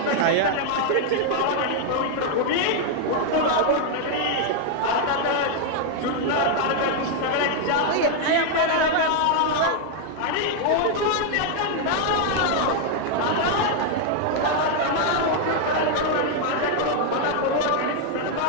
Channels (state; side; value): different; both; correlation 0.00